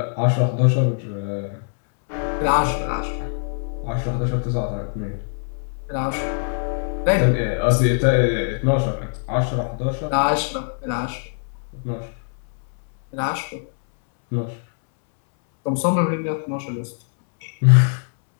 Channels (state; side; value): silent; right; 64 dB below the other